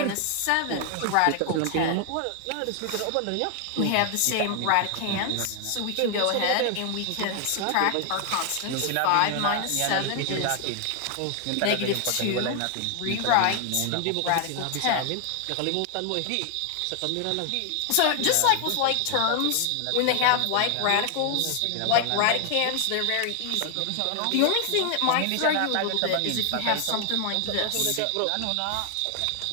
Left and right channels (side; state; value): both; different; correlation 0.00